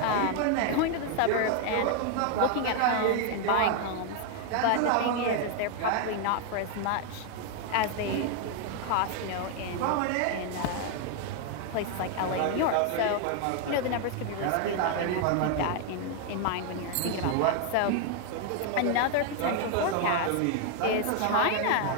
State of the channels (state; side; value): different; both; correlation 0.01